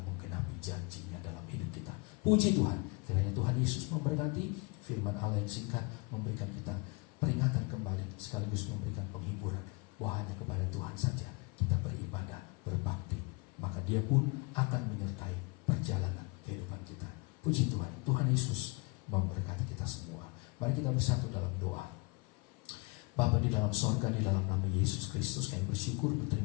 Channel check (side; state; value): right; quieter; 27.7 dB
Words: menggenapi janjinya dalam hidup kita. Puji Tuhan, kiranya Tuhan Yesus memberkati. Firman Allah yang singkat memberikan kita peringatan kembali sekaligus memberikan penghiburan bahwa hanya kepada Tuhan saja kita beribadah, berbakti, maka Dia pun akan menyertai perjalanan kehidupan kita. Puji Tuhan, Tuhan Yesus memberkati kita semua. Mari kita bersatu dalam doa. Bapa di dalam sorga, di dalam nama Yesus Kristus, kami bersyukur,